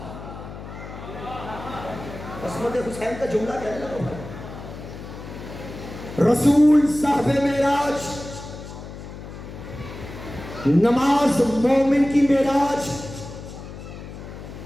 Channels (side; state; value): left; noise; hum, 12 dB below the sound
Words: عصمت حسین کا جملہ کہنے لگا. رسول صاحب معراج، نماز مومن کی معراج،